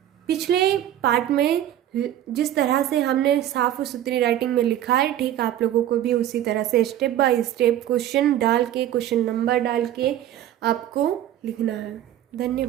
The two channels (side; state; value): left; quieter; 12.0 dB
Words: पिछले पार्ट में जिस तरह से हमने साफ और सुथरी राइटिंग में लिखा है, ठीक आप लोगों को भी उसी तरह से स्टेप बाय स्टेप क्वेश्चन डाल के, क्वेश्चन नंबर डाल के आपको लिखना है।